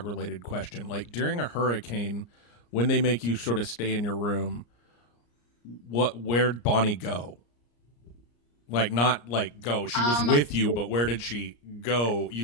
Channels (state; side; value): late; right; 34 ms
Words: related question. Like during a hurricane, when they make you sort of stay in your room, where'd Bonnie go? Like not like go. She was with you, but where did she go,